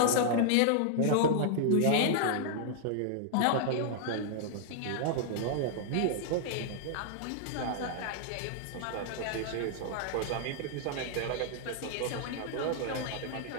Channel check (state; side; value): different; both; correlation -0.01